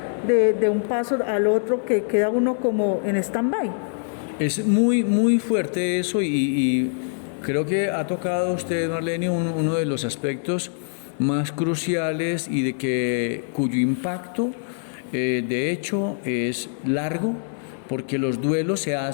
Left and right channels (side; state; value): right; silent; digital silence